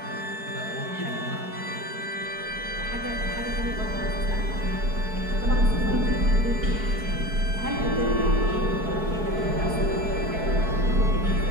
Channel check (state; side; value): late; left; 4.7 ms